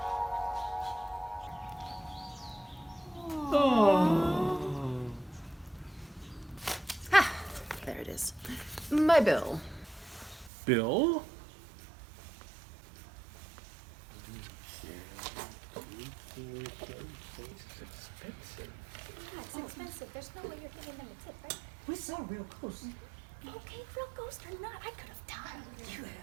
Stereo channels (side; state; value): left; drops out; at 10.5 s